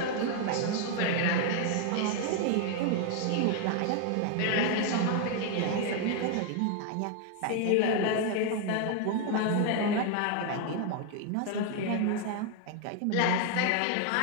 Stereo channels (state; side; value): different; both; correlation 0.00